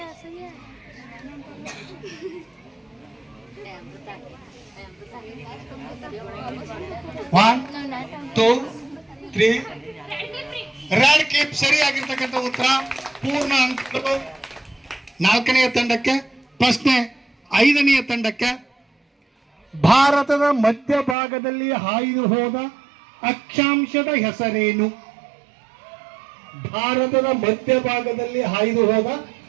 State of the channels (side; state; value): left; drops out; at 21.2 s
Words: 1 2 3 ರೆಡ್ ಕೀಪ್ ಸರಿಯಾಗಿರ್ತಕ್ಕಂಥ ಉತ್ತರ. ಪೂರ್ಣ ಅಂಕಗಳು ನಾಲ್ಕನೆಯ ತಂಡಕ್ಕೆ. ಪ್ರಶ್ನೆ 5ನೆಯ ತಂಡಕ್ಕೆ. ಭಾರತದ ಮಧ್ಯಭಾಗದಲ್ಲಿ ಹಾಯ್ದು ಹೋದ ಅಕ್ಷಾಂಶದ ಹೆಸರೇನು? ಭಾರತದ ಮಧ್ಯಭಾಗದಲ್ಲಿ ಹಾಯ್ದು ಹೋದ